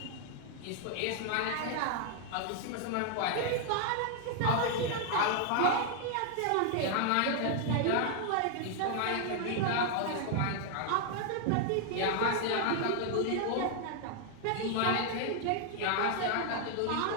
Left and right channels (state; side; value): different; both; correlation 0.00